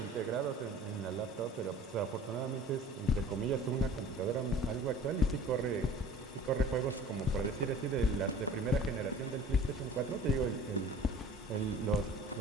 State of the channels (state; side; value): normal; both; correlation 0.44